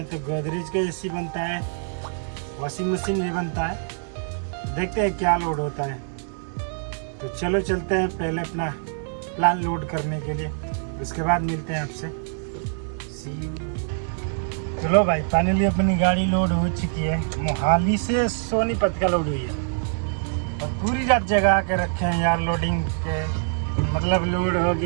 तो गोदरेज का एसी बनता है, वॉशिंग मशीन भी बनता है। देखते हैं क्या लोड होता है। तो चलो चलते हैं पहले अपना प्लान लोड करने के लिए, उसके बाद मिलते हैं आपसे। चलो भाई, फाइनली अपनी गाड़ी लोड हो चुकी है। मोहाली से सोनीपत का लोड हुई है और पूरी रात जगह के रखे हैं यार लोडिंग के, मतलब लोड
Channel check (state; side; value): silent; left; digital silence